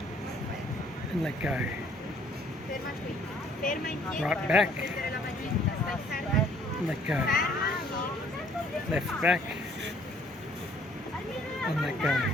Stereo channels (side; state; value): both; normal; correlation 0.60